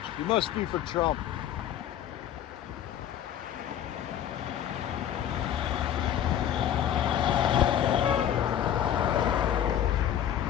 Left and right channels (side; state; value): right; quieter; 10.3 dB